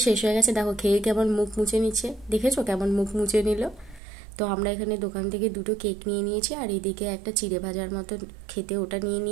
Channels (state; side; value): drops out; left; at 4.0 s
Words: শেষ হয়ে গেছে। দেখো খেয়ে কেমন মুখ মুছে নিচ্ছে, দেখেছো কেমন মুখ মুছে নিল। তো আমরা এখানে দোকান থেকে দুটো কেক নিয়ে নিয়েছি, আর এদিকে একটা চিড়ে ভাজার মতো খেতে ওটা নিয়ে